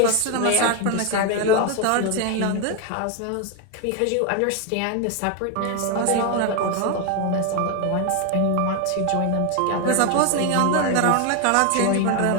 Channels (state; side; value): different; both; correlation 0.01